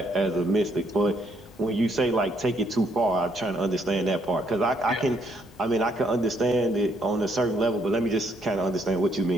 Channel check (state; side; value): normal; both; correlation 0.71